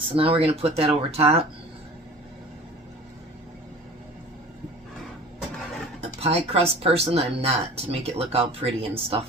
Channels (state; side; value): normal; both; correlation 0.42